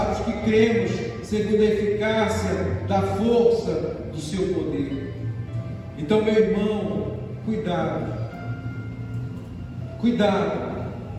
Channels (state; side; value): identical; both; correlation 1.00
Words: os que cremos, segundo a eficácia da força do seu poder. Então, meu irmão, cuidado,